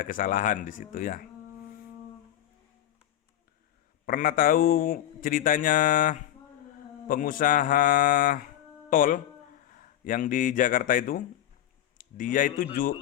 kesalahan di situ ya. Pernah tahu ceritanya pengusaha tol yang di Jakarta itu? Dia itu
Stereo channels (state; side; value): quieter; right; 11.9 dB